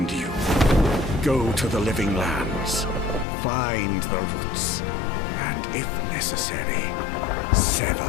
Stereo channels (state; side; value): drops out; right; at 3.2 s